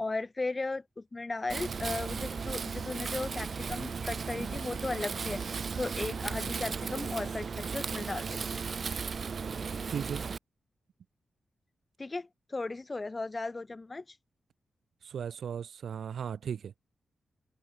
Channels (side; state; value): both; normal; correlation 0.90